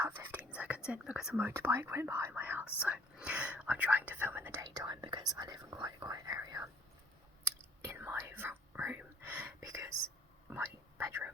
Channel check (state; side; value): normal; both; correlation 0.58